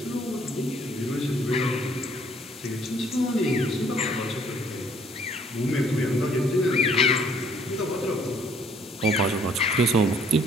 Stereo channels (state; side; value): normal; both; correlation 0.61